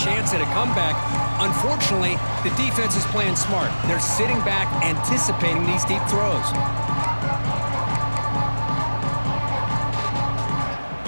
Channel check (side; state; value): both; inverted; correlation -1.00